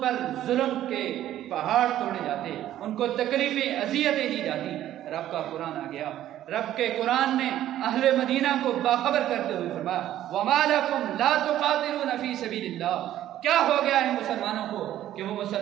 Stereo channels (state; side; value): quieter; left; 12.6 dB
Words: پر ظلم کے پہاڑ توڑے جاتے، ان کو تکلیفیں اذیتیں دی جاتی۔ رب کا قرآن آ گیا، رب کے قرآن نے اہل مدینہ کو باخبر کرتے ہوئے فرمایا وَمَا لَكُمْ لَا تُقَاتِلُونَ فِي سَبِيلِ اللَّهِ۔ کیا ہو گیا ہے مسلمانوں کو کہ وہ